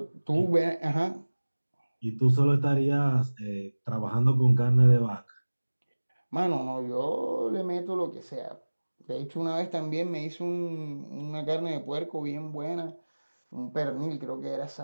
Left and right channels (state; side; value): inverted; both; correlation -1.00